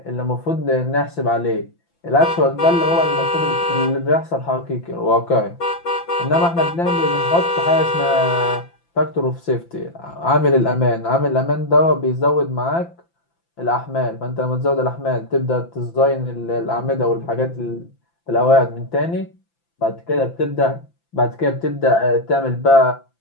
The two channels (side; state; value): right; late; 5.9 ms